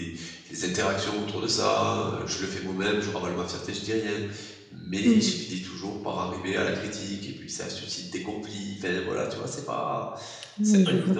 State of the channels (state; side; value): identical; both; correlation 1.00